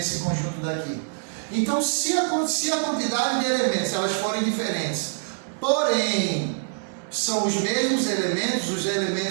conjunto daqui. Então, se a quantidade de elementos elas forem diferentes, porém são os mesmos elementos, os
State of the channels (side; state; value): left; silent; digital silence